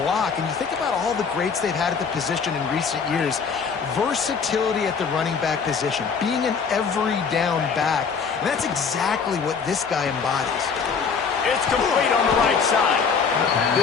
And you think about all the greats they've had at the position in recent years. Versatility at the running back position, being an every down back. And that's exactly what this guy embodies. It's complete on the right side.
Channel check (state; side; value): quieter; right; 5.8 dB